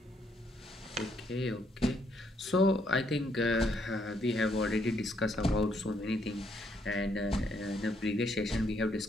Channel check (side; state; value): both; normal; correlation 0.72